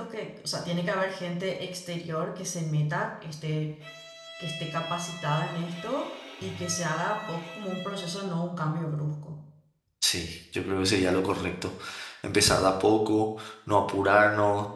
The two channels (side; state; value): both; identical; correlation 1.00